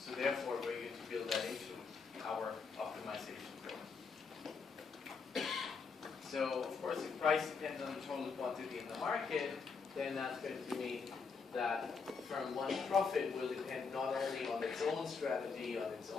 therefore, we're going to build that into our optimization program. So of course, if price depends on the total quantity in the market, then that's going to mean that firm 1's profit will depend not only on its own strategy, on its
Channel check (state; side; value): quieter; right; 5.2 dB